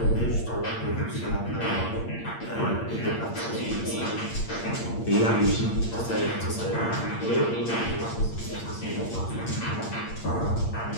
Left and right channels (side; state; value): right; late; 8.7 ms